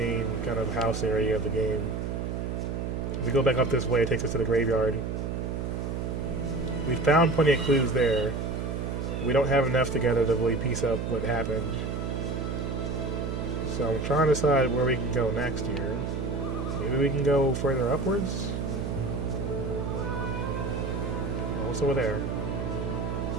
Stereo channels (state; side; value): noise; right; hum, 3 dB below the sound